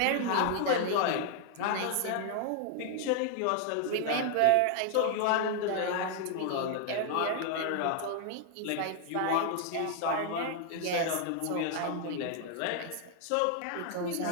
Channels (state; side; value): different; both; correlation 0.00